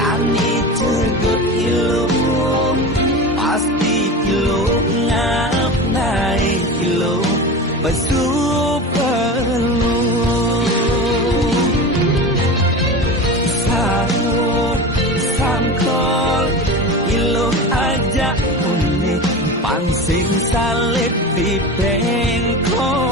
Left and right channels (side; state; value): both; normal; correlation 0.29